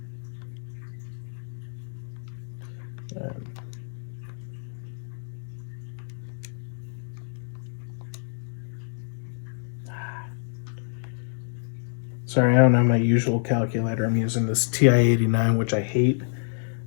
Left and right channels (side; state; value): right; silent; digital silence